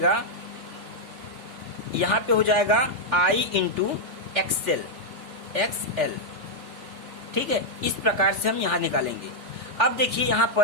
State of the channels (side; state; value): left; late; 3.4 ms